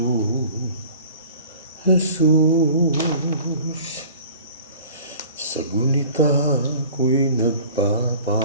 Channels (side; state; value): both; inverted; correlation -0.45